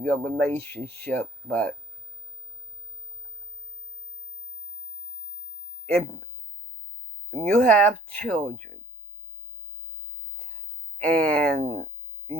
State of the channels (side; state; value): both; normal; correlation 0.53